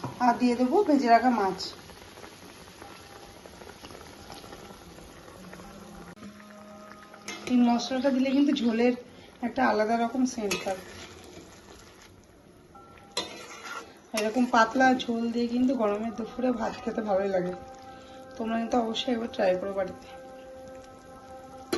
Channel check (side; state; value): both; identical; correlation 1.00